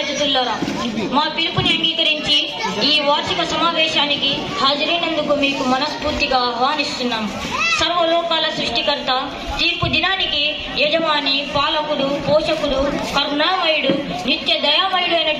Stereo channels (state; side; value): identical; both; correlation 1.00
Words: అతిథులారా, మా పిలుపుని అంగీకరించి ఈ వార్షిక సమావేశానికి హాజరైనందుకు మీకు మనస్ఫూర్తిగా ఆహ్వానిస్తున్నాం. సర్వలోకాల సృష్టికర్త, తీర్పు దినానికి యజమాని, పాలకుడు, పోషకుడు, కరుణామయుడు, నిత్య దయామయుడు